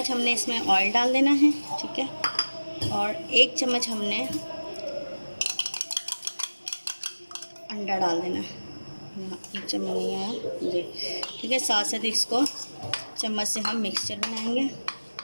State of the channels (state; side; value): inverted; both; correlation -1.00